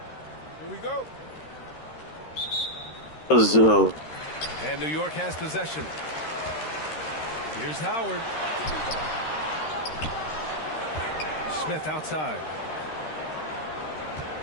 Here we go. And New York has possession. Here's Howard. Smith outside.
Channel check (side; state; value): right; late; 13 ms